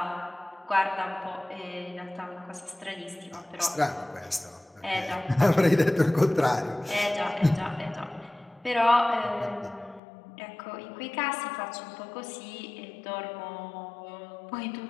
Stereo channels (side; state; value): right; drops out; at 10.0 s